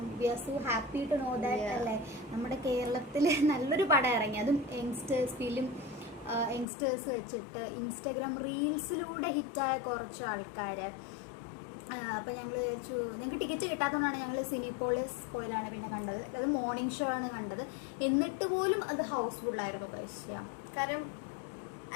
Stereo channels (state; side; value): drops out; right; at 6.7 s